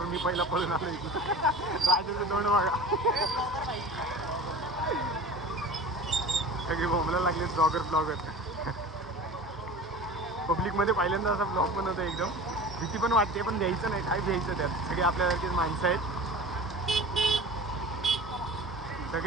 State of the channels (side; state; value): both; normal; correlation 0.37